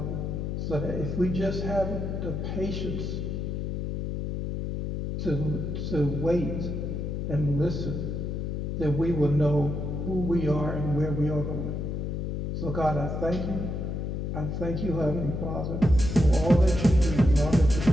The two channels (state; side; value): noise; left; hum, 3 dB below the sound